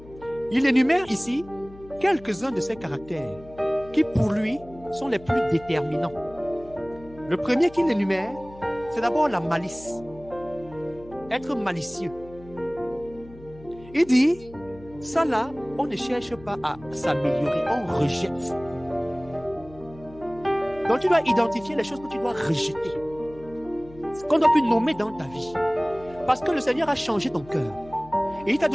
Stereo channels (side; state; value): left; noise; hum, 20 dB below the sound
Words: Il énumère ici quelques-uns de ces caractères qui, pour lui, sont les plus déterminants. Le premier qu'il énumère, c'est d'abord la malice. Être malicieux. Il dit, ça là, on ne cherche pas à s'améliorer, on rejette. Donc tu dois identifier les choses que tu dois rejeter. Ce qu'on doit plus nommer dans ta vie. Parce que le Seigneur a changé ton cœur. Et il t'a